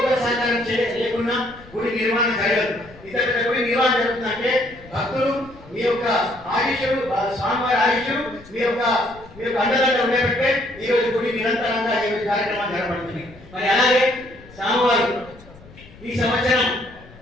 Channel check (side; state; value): left; noise; rumble, 22 dB below the sound